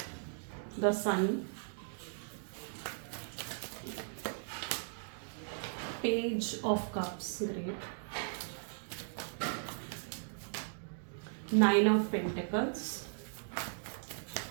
the Sun, Page of Cups, great, 9 of Pentacles,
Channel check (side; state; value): left; silent; digital silence